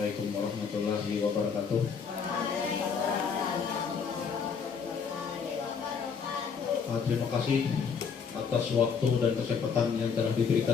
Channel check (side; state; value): right; quieter; 6.2 dB